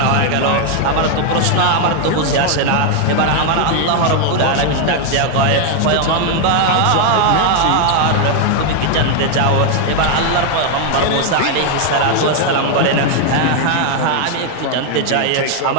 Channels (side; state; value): both; different; correlation 0.01